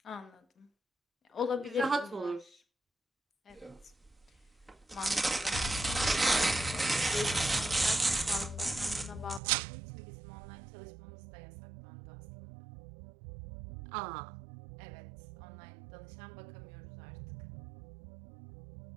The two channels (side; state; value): left; drops out; at 9.4 s